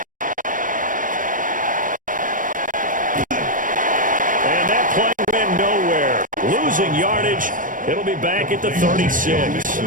And that play went nowhere. Losing yardage. It'll be back at the 36.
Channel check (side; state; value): left; late; 0.38 ms